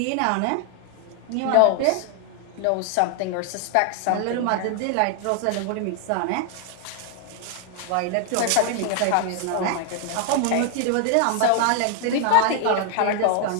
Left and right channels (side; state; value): both; different; correlation 0.00